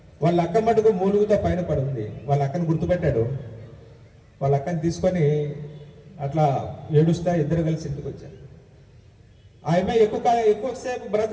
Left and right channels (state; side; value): identical; both; correlation 1.00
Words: వాళ్ళ అక్క మటుకు మూలుగుతో పైన పడుంది. వాళ్ళ అక్కను గుర్తుపెట్టాడు. వాళ్ళ అక్కని తీసుకొని అట్లా ఏడుస్తా ఇద్దరు కలిసి ఇంటికి వచ్చారు. ఆమె ఎక్కువసేపు